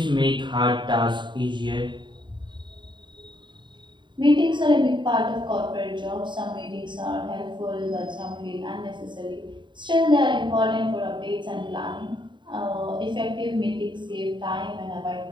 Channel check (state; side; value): late; left; 0.23 ms